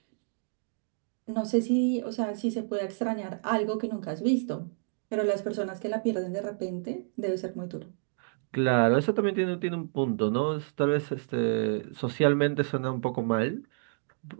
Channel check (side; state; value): left; silent; digital silence